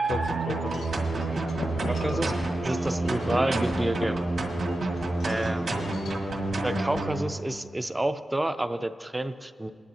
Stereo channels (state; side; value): normal; both; correlation 0.92